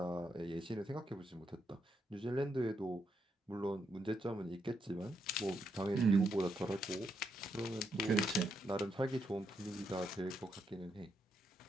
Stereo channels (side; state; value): both; normal; correlation 0.79